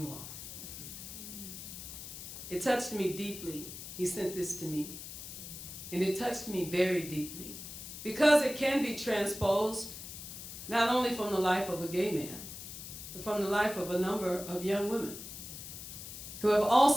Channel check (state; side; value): noise; left; hiss, 10 dB below the sound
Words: are. It touched me deeply. He sent this to me. And it touched me very deeply because it can be transposed not only from the life of a gay man, but from the life of a number of young women who have